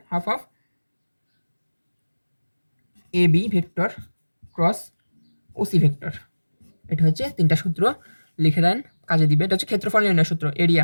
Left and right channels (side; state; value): both; inverted; correlation -1.00